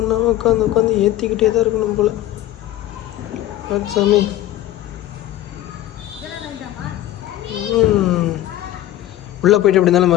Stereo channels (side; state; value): right; quieter; 13.8 dB